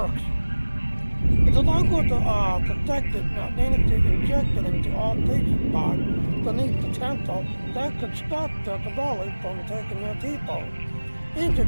If the Vaadwaur detected identity injected into all patient pods beneath the temple, that could stop the Kadali from taking their people.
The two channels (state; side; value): inverted; both; correlation -1.00